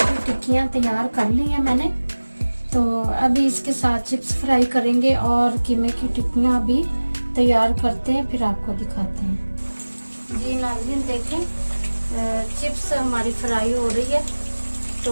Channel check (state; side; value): inverted; both; correlation -1.00